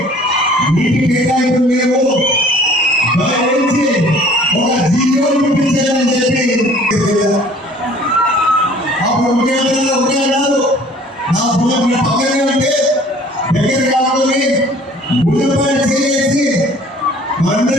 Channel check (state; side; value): normal; both; correlation 0.52